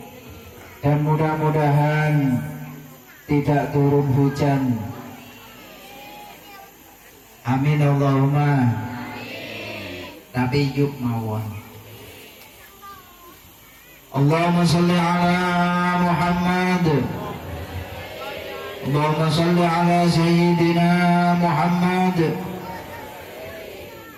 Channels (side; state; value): both; identical; correlation 1.00